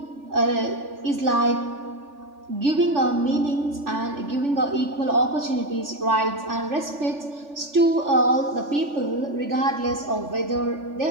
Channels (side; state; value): left; late; 3.4 ms